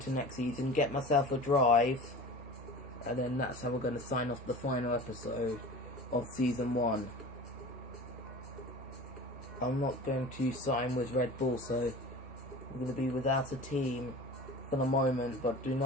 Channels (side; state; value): both; normal; correlation 0.36